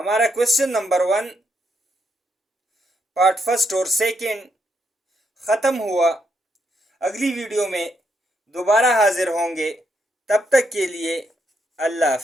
question number 1 part 1 और 2 ख़त्म हुआ। अगली वीडियो में दोबारा हाजिर होंगे। तब तक के लिए अल्लाह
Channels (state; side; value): normal; both; correlation 0.78